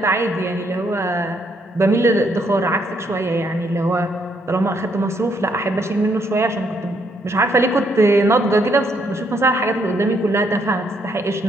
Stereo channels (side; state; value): both; normal; correlation 0.72